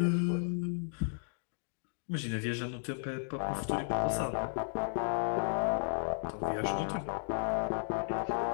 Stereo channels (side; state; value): right; silent; digital silence